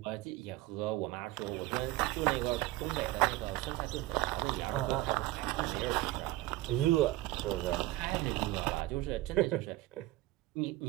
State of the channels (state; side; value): quieter; left; 17.4 dB